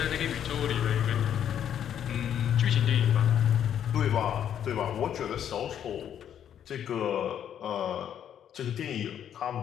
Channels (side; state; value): right; quieter; 9.6 dB